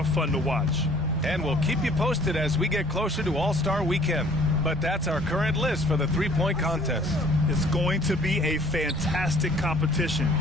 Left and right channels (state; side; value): normal; both; correlation 0.55